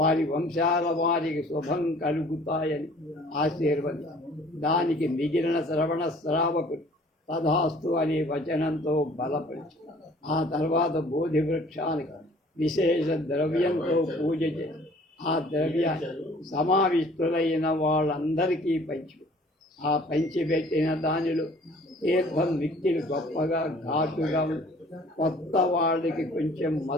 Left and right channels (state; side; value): normal; both; correlation 0.53